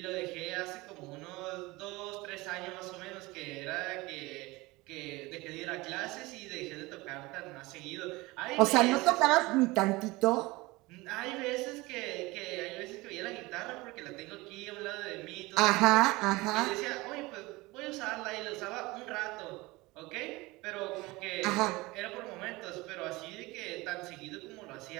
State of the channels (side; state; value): left; quieter; 21.8 dB